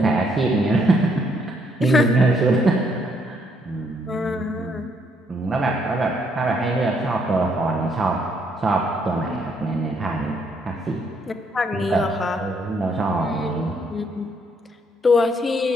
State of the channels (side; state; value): both; normal; correlation 0.71